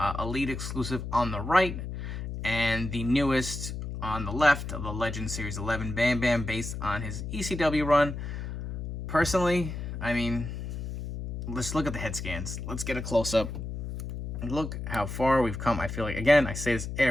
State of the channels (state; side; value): noise; left; hum, 6 dB below the sound